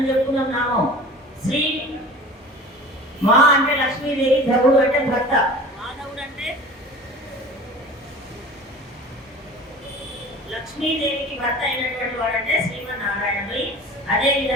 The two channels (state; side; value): normal; both; correlation 0.40